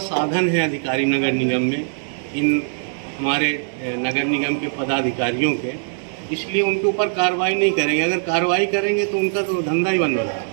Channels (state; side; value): silent; left; digital silence